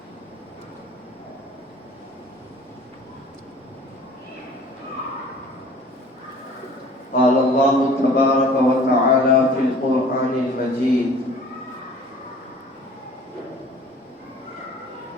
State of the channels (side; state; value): both; normal; correlation 0.48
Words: قال الله تبارك وتعالى في القرآن المجيد